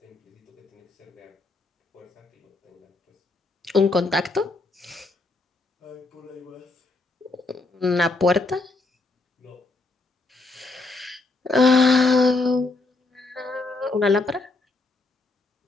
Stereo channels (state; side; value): quieter; right; 3.3 dB